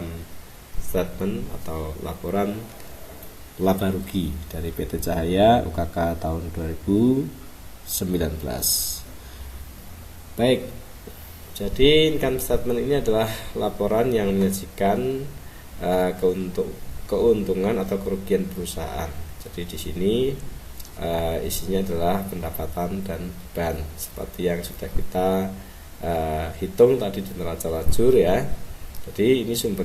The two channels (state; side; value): identical; both; correlation 1.00